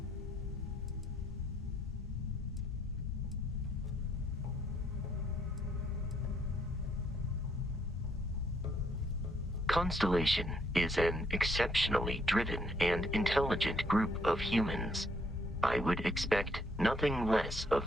Constellation is an exceptionally driven and intelligent group of humans. I would expect nothing less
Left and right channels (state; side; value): normal; both; correlation 0.70